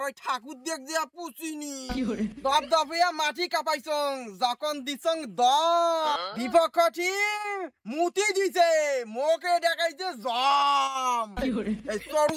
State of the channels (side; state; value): both; identical; correlation 1.00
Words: ওই ঠাকুর দেখ দিয়া পুছিনি দপ দপিয়া মাটি কাপাইছং যখন দিছং দ বিপক্ষ টিম মুতি দিছে মোকে দেখাইছে জম এই সরু